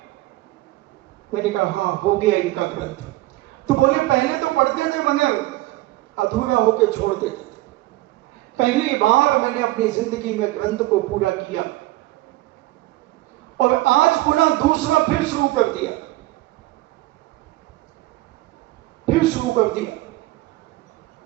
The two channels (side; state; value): left; quieter; 18.0 dB